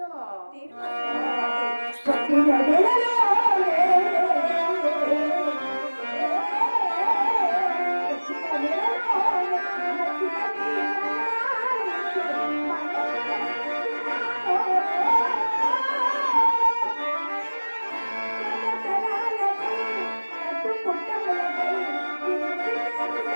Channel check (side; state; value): both; inverted; correlation -1.00